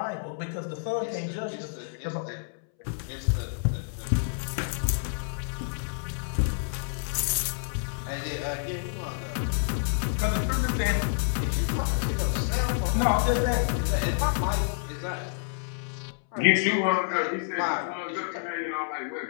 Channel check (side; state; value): right; silent; 59 dB below the other